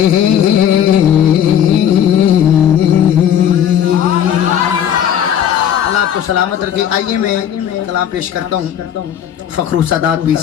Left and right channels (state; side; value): quieter; right; 9.6 dB